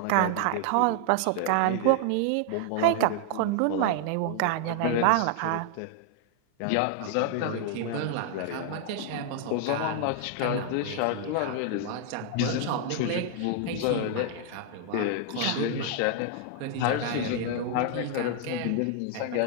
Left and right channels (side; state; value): both; different; correlation 0.00